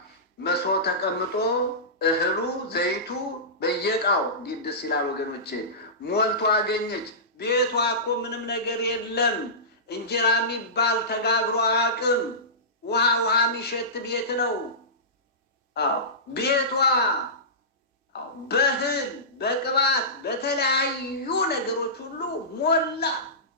መሶብ ተቀምጦ እህሉ ዘይቱ በየቃው እንዴት ደስ ይላል ወገኖቼ፣ ሞልቶ አገኘች። ቤቷ እኮ ምንም ነገር የለም። እንጀራ የሚባል ተጋግሮ አያውቅም። ውሃ የሚሸት ቤት ነው። አዎ ቤቷ በእህል በቅባት በተለያዩ ነገሮች ሁሉ ሞላ።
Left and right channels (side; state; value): both; normal; correlation -0.20